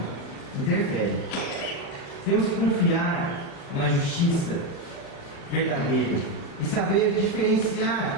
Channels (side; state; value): right; late; 36 ms